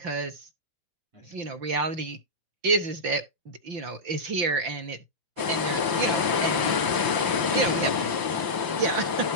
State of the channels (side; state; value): left; late; 5.8 ms